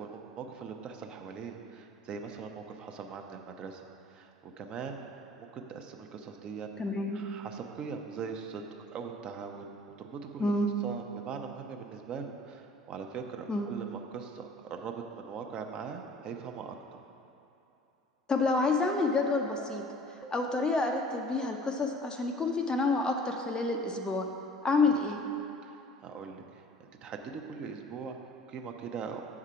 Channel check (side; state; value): both; normal; correlation 0.49